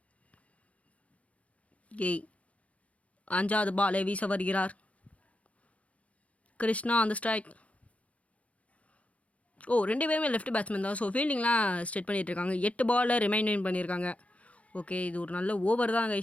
ஓகே, 5வது பாலை வீச வருகிறார். கிருஷ்ணா அந்த ஸ்ட்ரைக். ஓ, 2 பேருமே லெஃப்ட் பேட்ஸ்மேன் தான். ஸோ ஃபீல்டிங்லாம் ஸ்டெட் பண்ணிகிட்டு இருக்காங்க. 8 பாலில் ரிமைண்ட் பண்ணியிருக்காங்க. ஓகே, இது ஒரு நல்ல ஓவர் தான்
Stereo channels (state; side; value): late; right; 0.065 ms